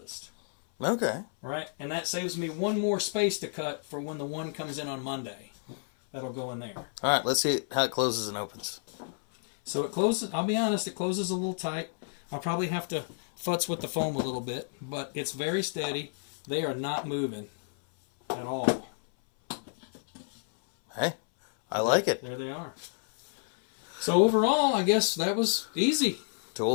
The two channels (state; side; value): silent; right; 58 dB below the other